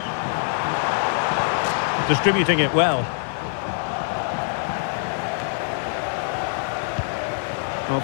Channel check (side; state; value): right; silent; 63 dB below the other